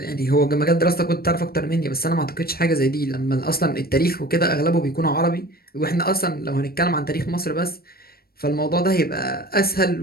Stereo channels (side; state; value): right; late; 0.44 ms